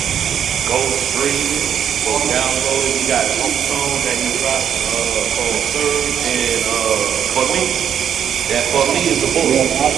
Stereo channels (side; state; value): left; quieter; 8.8 dB